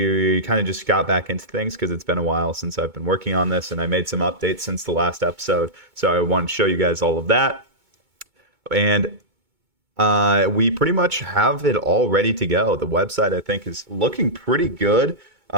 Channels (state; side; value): late; left; 2.2 ms